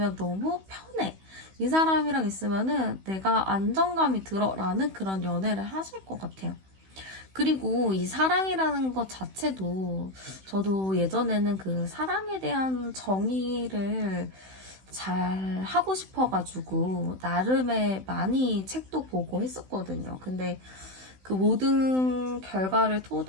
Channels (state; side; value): late; left; 16 ms